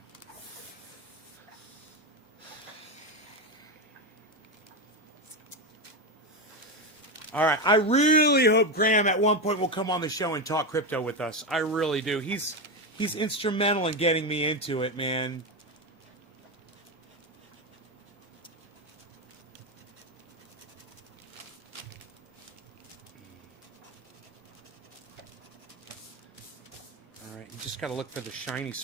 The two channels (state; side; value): normal; both; correlation 0.13